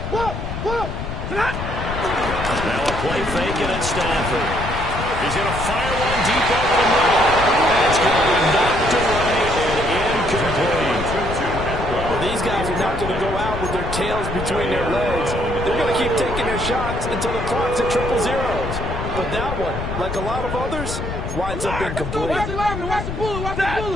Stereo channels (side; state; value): left; noise; rumble, 6 dB below the sound